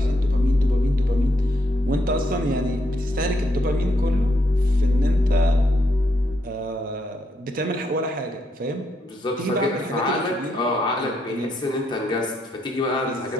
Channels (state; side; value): normal; both; correlation 0.77